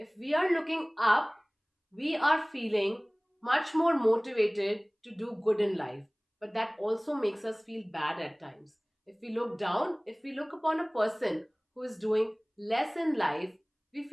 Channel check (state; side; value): identical; both; correlation 1.00